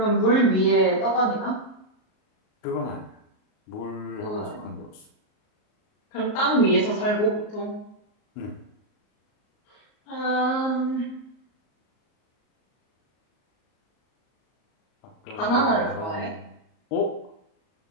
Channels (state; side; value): late; right; 38 ms